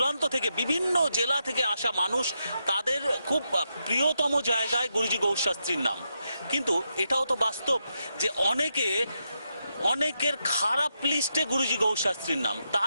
থেকে বিভিন্ন জেলা থেকে আসা মানুষ, তাদের খুব প্রিয়তম জায়গায় গুরুজি গৌর শাস্ত্রীর নাম, কিন্তু এটাও তো বাস্তব যে অনেকের খারাপ লিস্টে গুরুজি গৌর শাস্ত্রীর নাম।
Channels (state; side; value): inverted; both; correlation -0.84